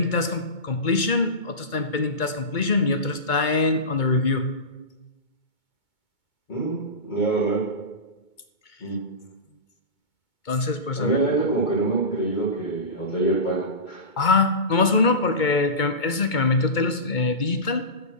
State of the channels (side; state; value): right; late; 2.2 ms